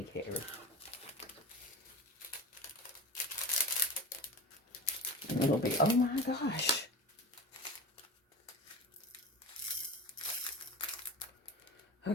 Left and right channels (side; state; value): both; normal; correlation 0.30